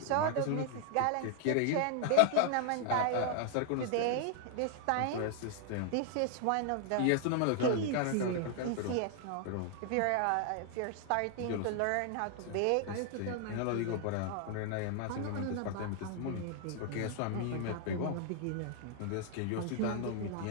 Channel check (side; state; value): both; different; correlation 0.00